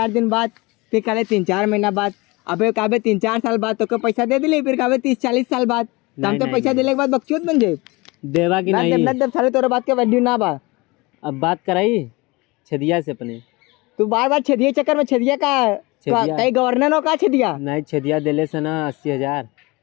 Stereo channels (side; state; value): right; quieter; 24.1 dB